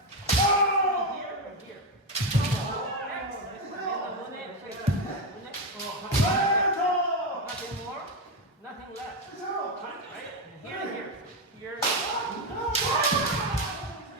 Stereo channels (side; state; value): both; normal; correlation 0.10